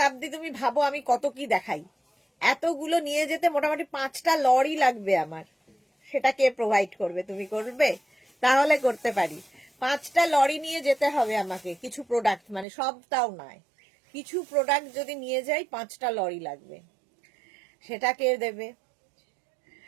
তুমি ভাবো আমি কত কি দেখাই, এতগুলো নিয়ে যেতে মোটামুটি 5টা লরি লাগবে আমার। সেটা কে প্রোভাইড করবে? তুমি করবে? তাহলে করতে পারি। 5টা লরি নিয়ে যেতে হবে আমাকে, কিছু প্রোডাক্ট, মানে সবটাও নয়, কিছু প্রোডাক্ট যদি নিয়ে যাই 5টা লরি লাগবে। সেটা কে দেবে?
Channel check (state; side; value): drops out; left; at 12.7 s